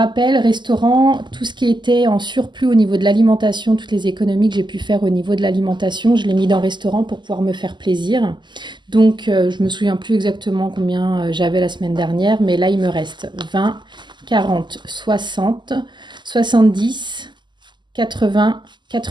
restaurant, tout ce qui était en surplus au niveau de l'alimentation, toutes les économies que j'ai pu faire au niveau de l'alimentation, je l'ai mis dans restaurant pour pouvoir me faire plaisir. Donc, je me souviens plus exactement combien j'avais la semaine dernière, mais là, il me reste 20, 40, 60, 70, 80,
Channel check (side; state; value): left; late; 0.22 ms